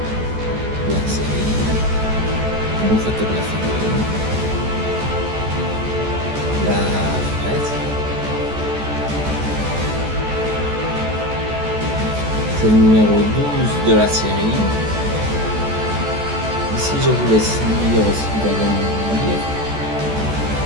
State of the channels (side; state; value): left; late; 14 ms